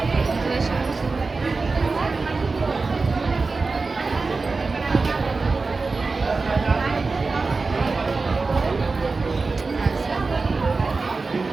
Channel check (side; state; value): left; quieter; 4.0 dB